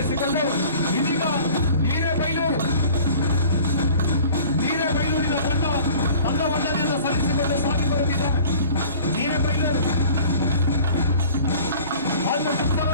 ಇದೀಗ ಹಿರೇಬೈಲೂರಿನ ತಂಡ ತನ್ನ ವಂದನೆಯನ್ನು ಸಲ್ಲಿಸಿಕೊಂಡು ಸಾಗಿ ಬರುತ್ತಿದ್ದಾರೆ. ಹಿರೇಬೈಲೂರು ಹಾಗೂ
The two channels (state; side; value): inverted; both; correlation -0.46